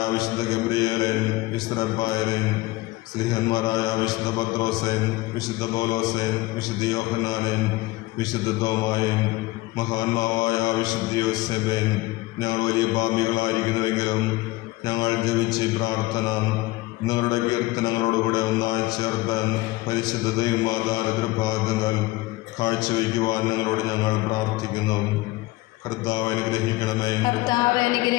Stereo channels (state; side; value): quieter; right; 19.8 dB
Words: വിശുദ്ധ ഗബ്രിയേലേൻ, വിശുദ്ധ റഫായേലേൻ, സ്ലീഹന്മാരായ വിശുദ്ധ പത്രോസേൻ, വിശുദ്ധ പൗലോസേൻ, വിശുദ്ധ യോഹന്നാനേൻ, വിശുദ്ധ തോമായേൻ, മഹാന്മാവായ വിശുദ്ധ യോസേബേൻ, ഞങ്ങൾ വലിയ പാപികളായിരിക്കുന്നുവെങ്കിലും ഞങ്ങൾ ജപിച്ച ഈ പ്രാർത്ഥന നിങ്ങളുടെ കീർത്തനങ്ങളോടുകൂടെ ഒന്നായി ചേർത്താൻ പരിശുദ്ധ ദൈവമാതാരതൃപാദങ്ങൾ കാഴ്ചവെക്കുവാൻ നിങ്ങളോട് ഞങ്ങൾ പ്രാർത്ഥിക്കുന്നു. കർത്താവ് അനുഗ്രഹിക്കണമേ. കർത്താവ്